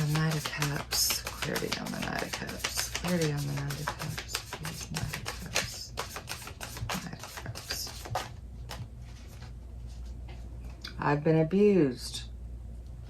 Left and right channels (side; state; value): both; identical; correlation 1.00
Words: Knight of Cups. Clarity on the Knight of Cups. Clarity on the Knight of Cups. Please, Knight of Cups. Knight of Cups. I've been abused.